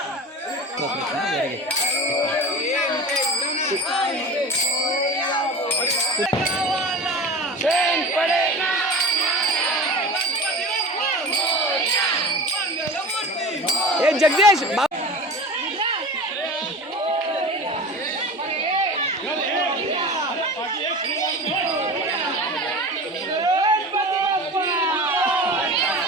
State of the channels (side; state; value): both; normal; correlation 0.33